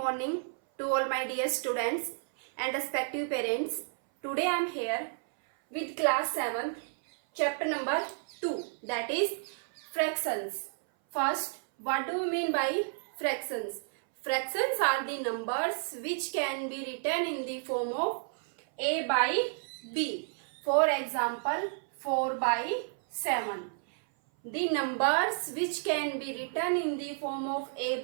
to all my dear students and respective parents. Today I am here with class 7th, chapter number 2, that is fractions. First, what do we mean by fractions? Fractions are the numbers which can be written in the form of A by B. For example, 4 by 7. The numbers which can be written in the form of A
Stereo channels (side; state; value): left; silent; 57 dB below the other